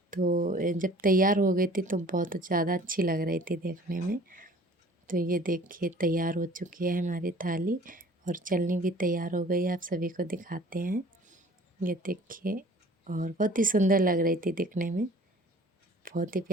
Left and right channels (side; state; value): both; normal; correlation 0.49